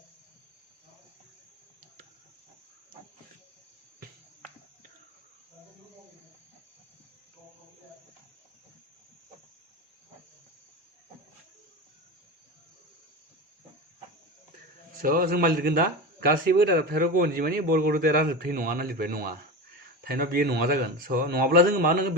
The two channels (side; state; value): both; normal; correlation 0.24